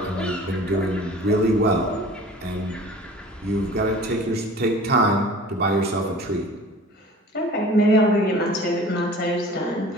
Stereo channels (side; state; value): both; normal; correlation 0.44